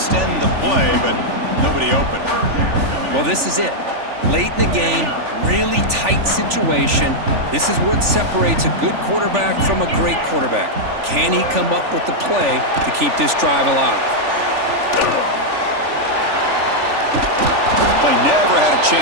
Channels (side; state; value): left; late; 3.4 ms